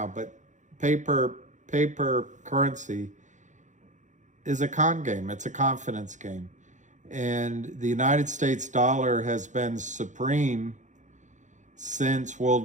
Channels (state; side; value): late; left; 0.35 ms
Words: but paper currency is a con game. It's a confidence game. And the United States dollar has been supreme since